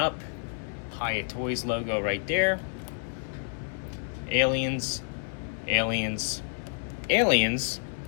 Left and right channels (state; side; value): silent; right; digital silence